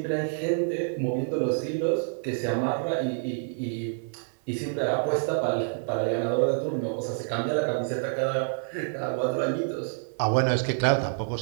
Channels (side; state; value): left; silent; 56 dB below the other